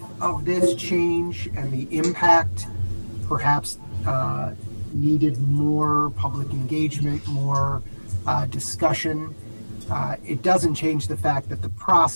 of this change and the impact perhaps needed more public engagement, more discussion, it doesn't change the fact that the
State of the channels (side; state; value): both; inverted; correlation -1.00